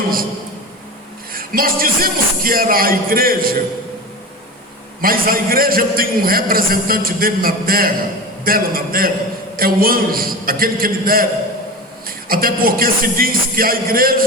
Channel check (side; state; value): both; normal; correlation 0.29